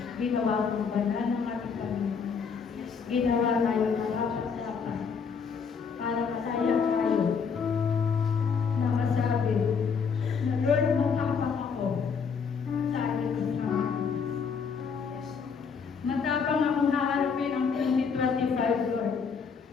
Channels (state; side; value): quieter; right; 6.0 dB